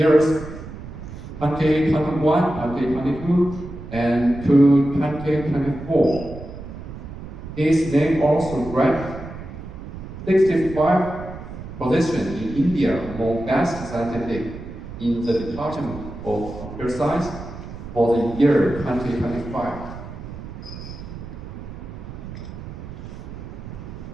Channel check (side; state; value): right; noise; rumble, 11 dB below the sound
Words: 2021, 2022, and 2024. His name also ranked 65 position in India among best scientific in the Department of Computer Science for the year 2025.